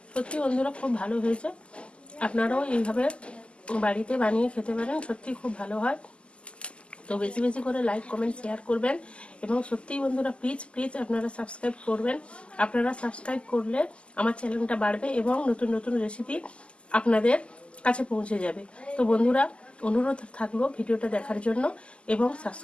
সত্যি বন্ধুরা খুব ভালো হয়েছে, আপনারাও এইভাবে বাড়িতে বানিয়ে খেতে পারেন, সত্যি খুব ভালো হয়। তো বেশি বেশি করে লাইক কমেন্ট শেয়ার করবেন এবং সত্যিই বন্ধুরা প্লিজ আপনারা সাবস্ক্রাইব করবেন। আপনারা সাবস্ক্রাইব করলে আমার চ্যানেলটা বাড়বে এবং নতুন নতুন রেসিপি আপনাদের কাছে পৌঁছে যাবে। তো বন্ধুরা অনুরোধ থাকলো ভিডিওটা দেখার জন্য এবং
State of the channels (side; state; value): right; late; 0.053 ms